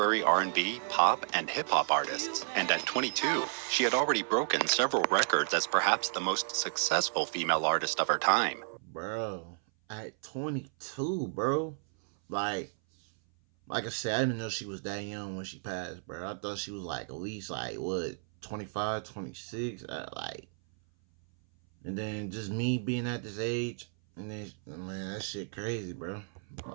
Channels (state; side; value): silent; left; 56 dB below the other